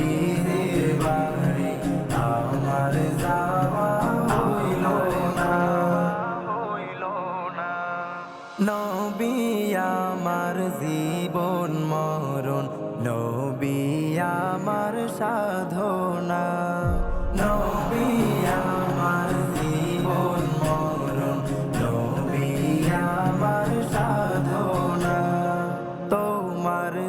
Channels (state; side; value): identical; both; correlation 1.00